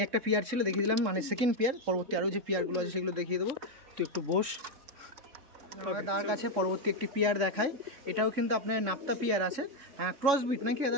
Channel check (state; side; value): late; left; 3.5 ms